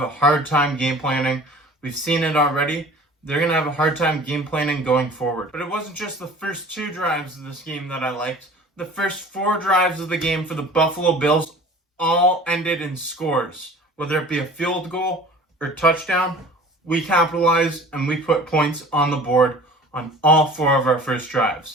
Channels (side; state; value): both; normal; correlation 0.44